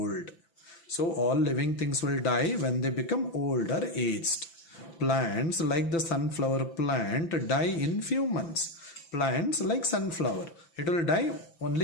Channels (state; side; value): late; right; 5.9 ms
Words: So all living things will die when they become old or aged. Plants like the sunflower plant die in few months. Plants like sunflower, it will die